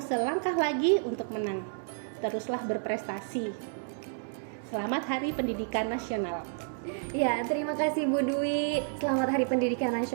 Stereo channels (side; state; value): left; silent; digital silence